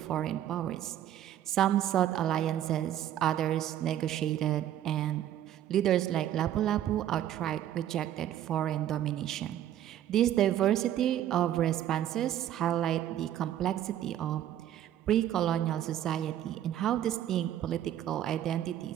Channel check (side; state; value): left; quieter; 11.6 dB